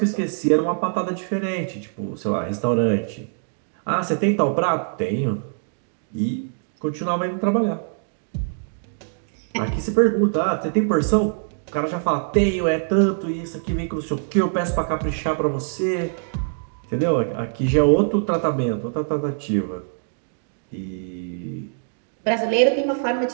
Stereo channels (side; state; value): left; silent; digital silence